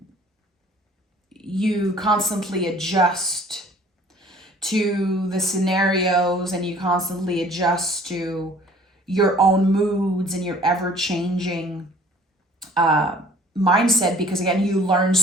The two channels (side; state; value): both; normal; correlation 0.52